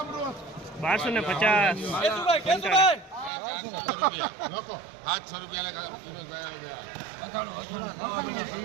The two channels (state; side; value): drops out; left; at 3.3 s